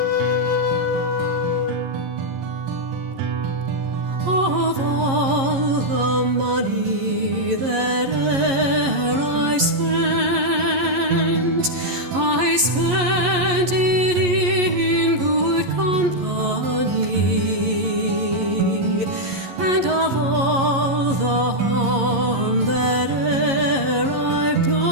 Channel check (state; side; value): late; left; 11 ms